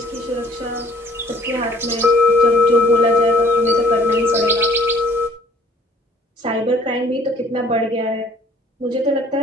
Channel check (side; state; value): both; normal; correlation 0.57